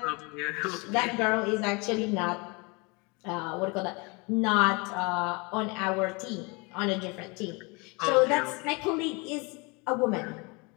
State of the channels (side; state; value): right; quieter; 28.9 dB